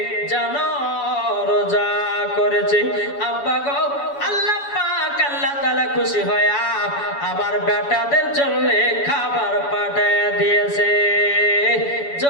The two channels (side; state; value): right; late; 7.1 ms